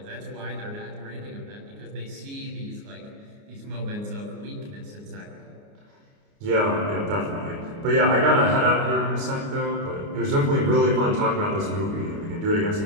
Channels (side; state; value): left; late; 29 ms